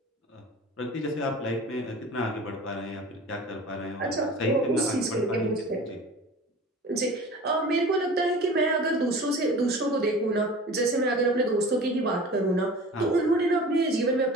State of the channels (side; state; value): both; normal; correlation 0.39